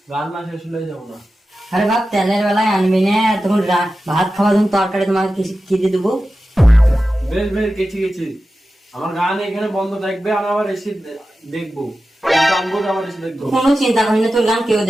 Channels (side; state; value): both; normal; correlation 0.93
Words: গান না শেষ হলে যাবো না। আরে বাপ তেলের বেলায় আনবি না, তখন ভাত খাওয়া তখন তরকারি তোমাকে কি দিয়ে দেবো? বেশ বেশ গেছি গেছি, আমার গান এখানে বন্ধ থাকবে, আমি আবার এসে দেখবো, গানবো আবার এসে দেখবো। কোনো চিন্তা করি না, তোর গান কেউ